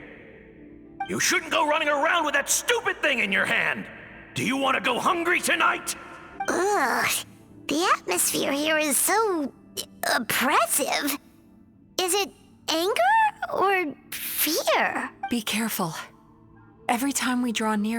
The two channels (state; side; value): identical; both; correlation 1.00